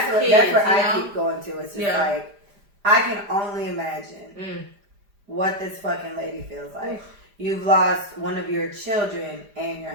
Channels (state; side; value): late; left; 5.0 ms